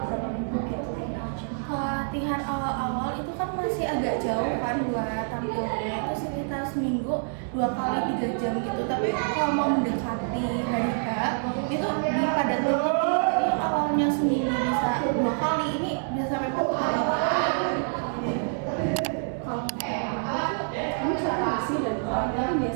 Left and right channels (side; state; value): left; silent; digital silence